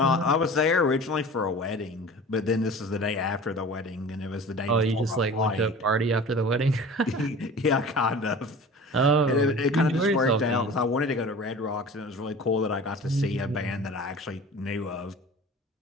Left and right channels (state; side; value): normal; both; correlation 0.40